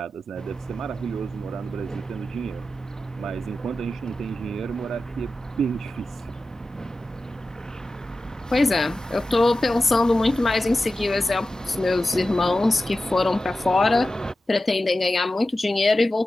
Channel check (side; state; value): both; normal; correlation 0.94